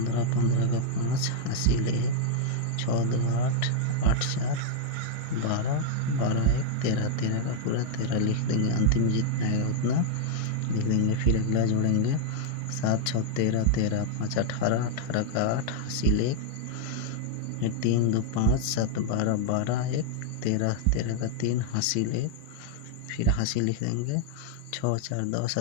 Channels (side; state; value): both; different; correlation -0.01